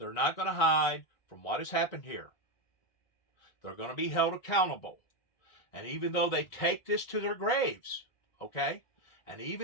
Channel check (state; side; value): late; right; 1.4 ms